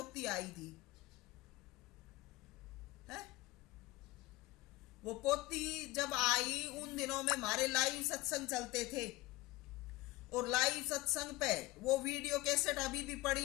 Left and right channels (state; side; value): quieter; right; 20.2 dB